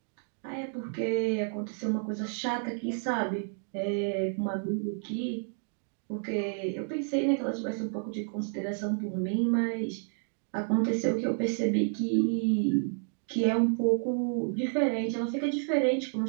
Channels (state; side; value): silent; left; 58 dB below the other